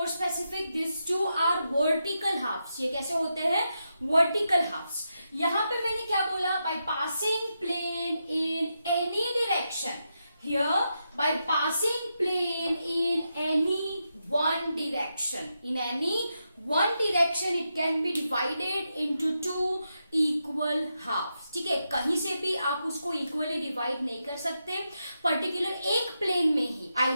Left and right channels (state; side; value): inverted; both; correlation -0.85